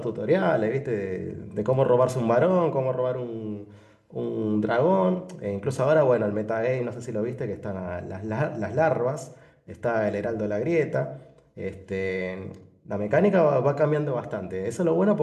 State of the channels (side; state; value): both; identical; correlation 1.00